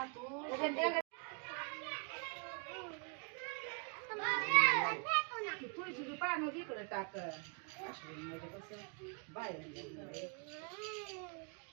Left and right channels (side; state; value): left; quieter; 38.8 dB